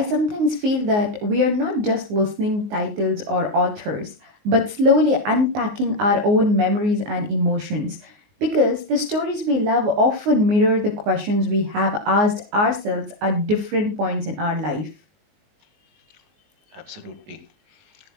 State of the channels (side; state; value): left; late; 19 ms